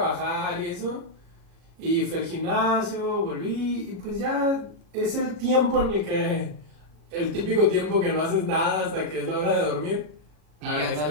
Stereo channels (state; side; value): late; left; 40 ms